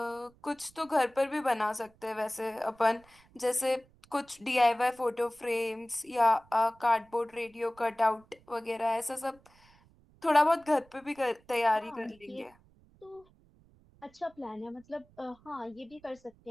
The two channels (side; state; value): right; noise; rumble, 29 dB below the sound